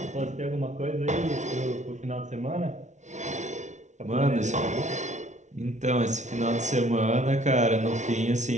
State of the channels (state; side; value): late; left; 0.34 ms